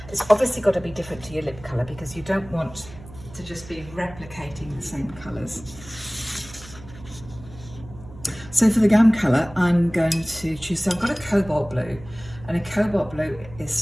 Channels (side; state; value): right; noise; hum, 17 dB below the sound